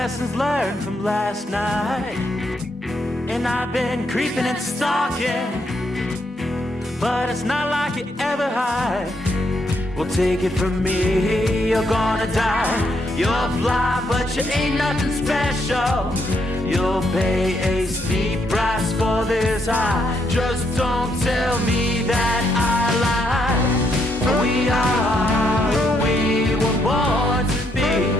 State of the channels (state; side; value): normal; both; correlation 0.76